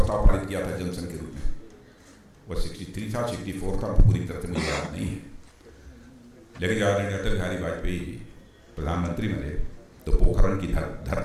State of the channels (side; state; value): both; identical; correlation 1.00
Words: पारित किया था जनसंघ के रूप में। वो 63 था, 64 था, पूरी तरह से मुझे याद नहीं है। लेकिन जब आदरणीय अटल बिहारी वाजपेयी जी प्रधानमंत्री बने तो पोखरण की